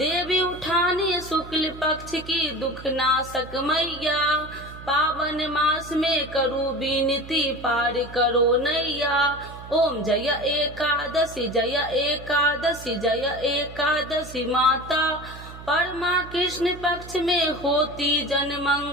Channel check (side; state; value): right; noise; hum, 15 dB below the sound